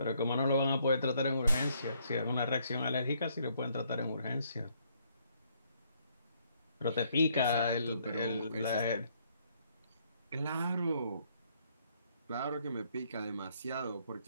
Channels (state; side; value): inverted; both; correlation -0.69